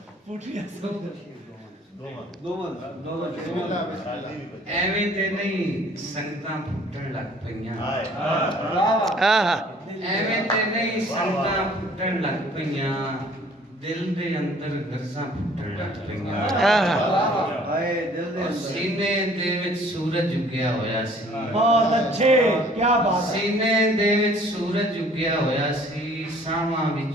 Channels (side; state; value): both; normal; correlation 0.55